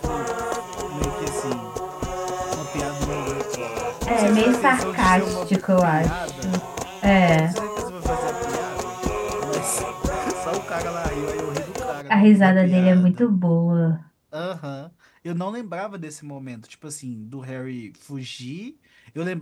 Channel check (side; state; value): both; identical; correlation 1.00